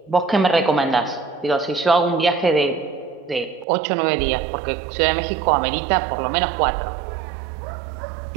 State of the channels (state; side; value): drops out; left; at 3.7 s